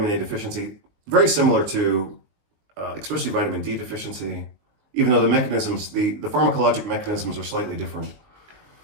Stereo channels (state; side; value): late; left; 19 ms